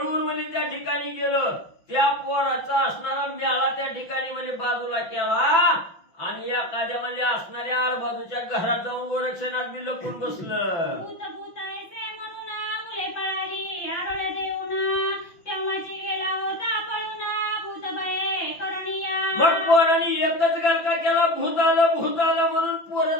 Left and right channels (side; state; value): right; late; 6.0 ms